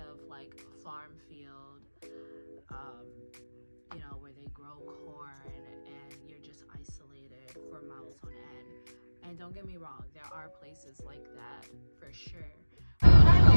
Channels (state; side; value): inverted; both; correlation -1.00